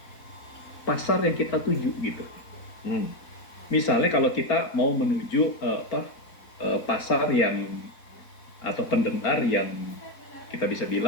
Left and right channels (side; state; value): right; late; 4.1 ms